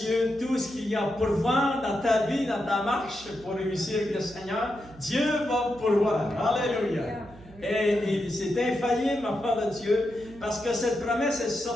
tout ce qu'il y a à pourvoir dans ta vie, dans ta marche pour réussir avec le Seigneur, Dieu va pourvoir. Alléluia. Et c'est infaillible, enfant de Dieu, parce que cette promesse est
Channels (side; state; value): right; noise; hum, 20 dB below the sound